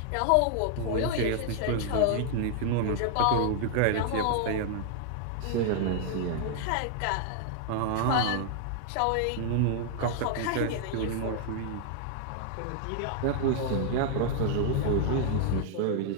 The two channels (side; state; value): both; different; correlation 0.00